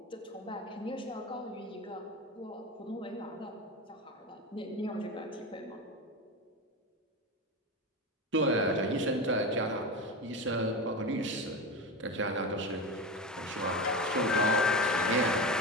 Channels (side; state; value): both; normal; correlation 0.22